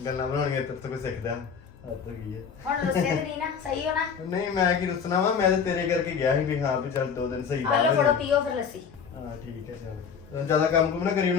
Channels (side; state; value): right; quieter; 6.5 dB